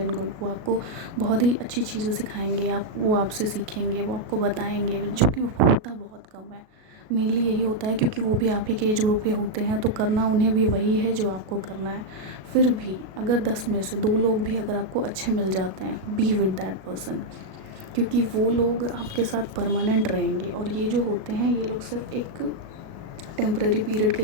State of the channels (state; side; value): late; left; 37 ms